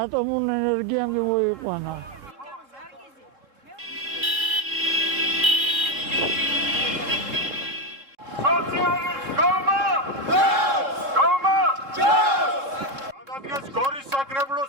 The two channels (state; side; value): late; left; 3.7 ms